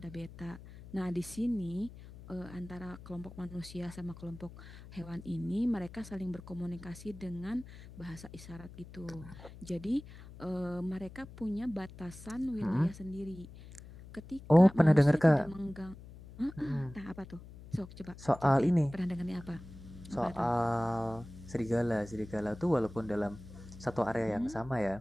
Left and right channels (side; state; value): left; noise; hum, 16 dB below the sound